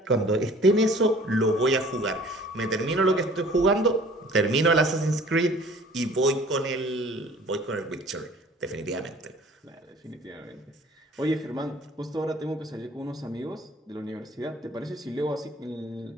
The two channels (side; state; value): both; normal; correlation 0.51